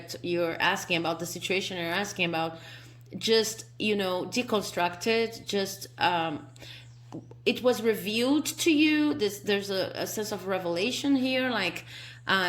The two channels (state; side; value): identical; both; correlation 1.00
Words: you're asking about, the situation you're asking about. just, deconstructed, just it was revealed to you. There's a sense of revelation here, like